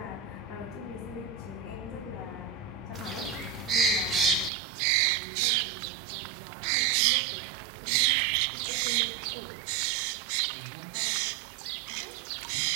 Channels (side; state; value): left; drops out; at 4.5 s